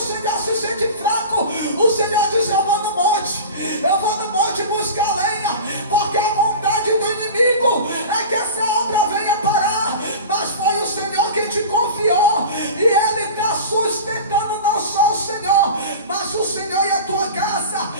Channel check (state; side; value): inverted; both; correlation -0.33